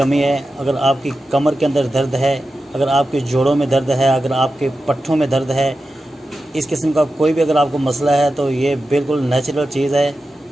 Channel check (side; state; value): both; normal; correlation 0.92